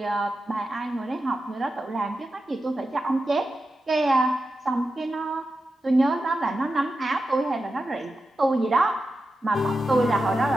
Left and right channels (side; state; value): both; normal; correlation 0.91